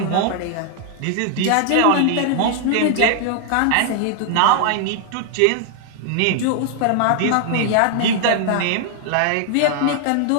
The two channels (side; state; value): both; different; correlation 0.00